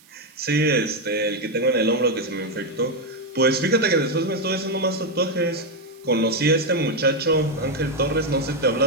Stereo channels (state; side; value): noise; right; hiss, 28 dB below the sound